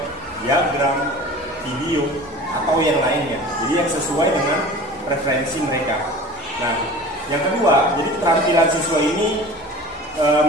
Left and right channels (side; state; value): both; normal; correlation 0.39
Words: diagram, video atau yang lainnya. Jadi yang sesuai dengan preferensi mereka. Nah, yang kedua, jadi keterampilan siswa ini